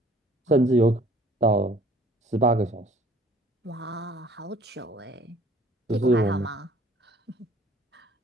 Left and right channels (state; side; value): normal; both; correlation 0.54